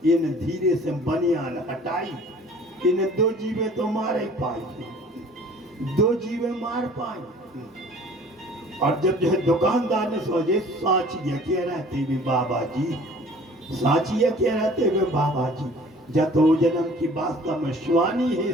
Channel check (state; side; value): normal; both; correlation 0.49